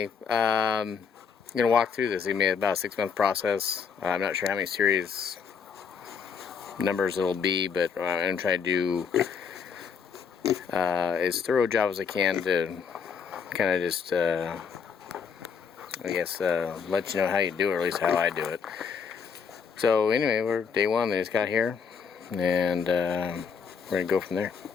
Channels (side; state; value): right; quieter; 6.3 dB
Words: I'm gonna walk through this. It may be about a 6-month process. I'm not sure how many series numbers it'll be, but I'm gonna try to do as thorough a job as I can to kind of just I guess let you know how you do it, or at least how I do it. So anyway, we're day one. They just got here, and we're gonna go from there.